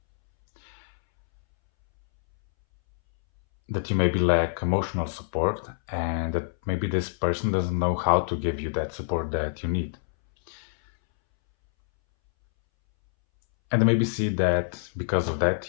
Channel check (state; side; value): silent; right; 61 dB below the other